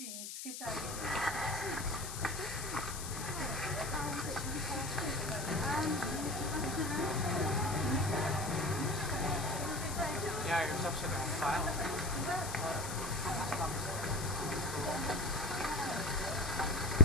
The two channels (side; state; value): left; noise; hiss, 8 dB below the sound